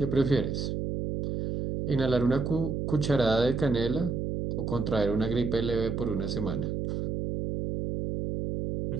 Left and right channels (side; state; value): right; noise; hum, 2 dB below the sound